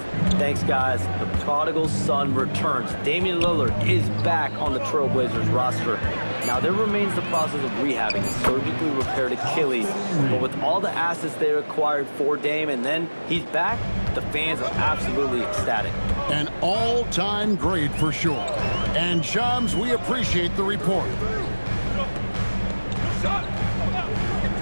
Thanks, guys. The prodigal son returns. Damian Lillard is back on the Trailblazers roster. Now, there remains the process of rehabbing a surgically repaired Achilles, but with all the assets they acquired for Dame, and then he's back, the fans are absolutely ecstatic. An all-time great for sure. And Shams, we appreciate the report.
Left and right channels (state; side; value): inverted; both; correlation -1.00